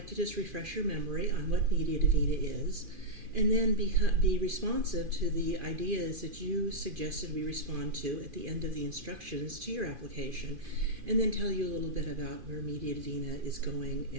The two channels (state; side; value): late; left; 2.5 ms